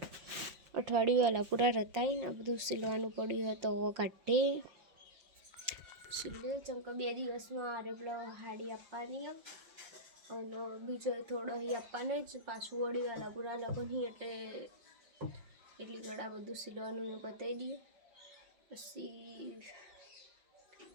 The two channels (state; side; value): late; left; 5.5 ms